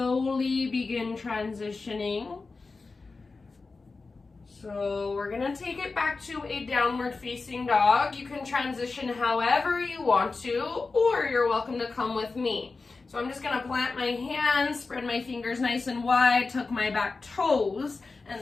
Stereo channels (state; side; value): quieter; right; 4.0 dB